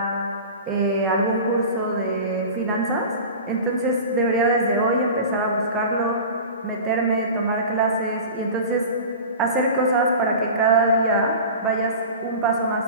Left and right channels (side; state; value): both; inverted; correlation -0.34